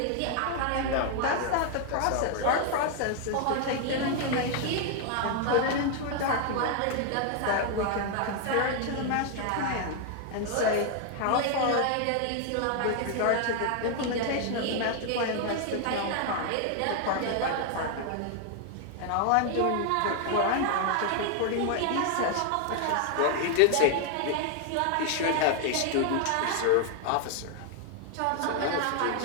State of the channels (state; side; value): different; both; correlation 0.00